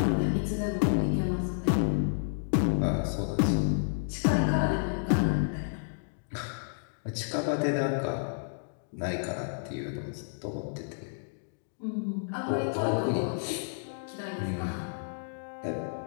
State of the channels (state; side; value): silent; right; digital silence